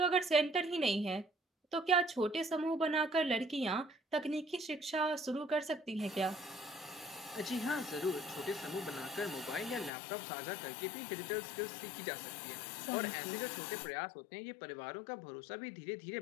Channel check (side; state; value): right; drops out; at 9.9 s